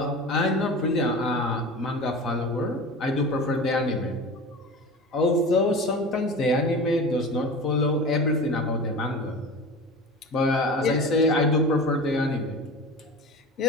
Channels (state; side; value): normal; both; correlation 0.33